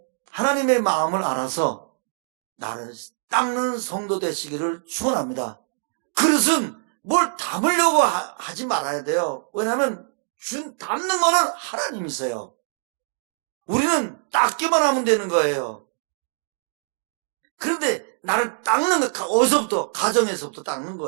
하나님의 마음을 알아서 나를 닦는 성도 되시기를 축원합니다. 그릇은 뭘 담으려고 하지 말아야 돼요. 왜냐하면 담는 거는 하나님이세요. 우리는 닦기만 하면 되는 거예요. 그런데 나를 닦는 거 어디서부터? 가정에서부터 닦는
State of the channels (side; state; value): left; silent; digital silence